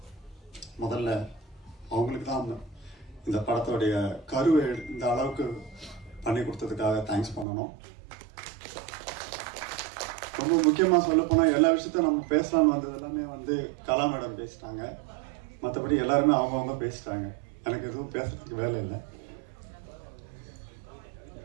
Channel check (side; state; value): left; drops out; at 7.5 s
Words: முதல்ல அவங்களுக்கு தான் இந்த படத்தோடைய கருவை இந்த அளவுக்கு பண்ணி கொடுத்ததுக்காக தேங்க்ஸ் பண்ணணும். ரொம்ப முக்கியமாக சொல்ல போனால் எல்லா விஷயத்தையும் நம்ம பேசலான்னு வந்தது எல்லாமே கலா மேடம் பேசிட்டாங்க. மற்றபடி எல்லாருமே அவங்கவுங்க பேசிட்டாங்க. எனக்கு எதுவும் பேசுறதுக்கு வேலை இல்லை.